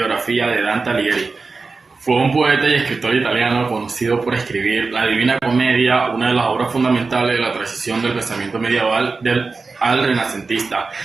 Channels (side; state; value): left; quieter; 4.2 dB